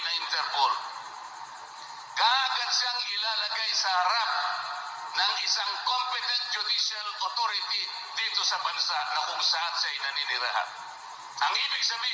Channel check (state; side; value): identical; both; correlation 1.00